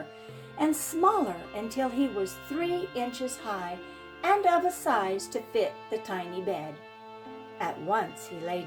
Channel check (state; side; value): identical; both; correlation 1.00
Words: and smaller until he was 3 inches high and of a size to fit the tiny bed. At once he lay